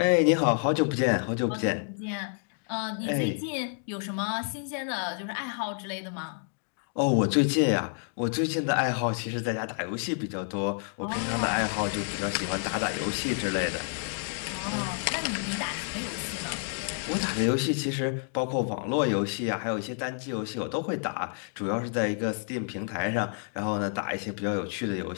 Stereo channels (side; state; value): right; silent; 58 dB below the other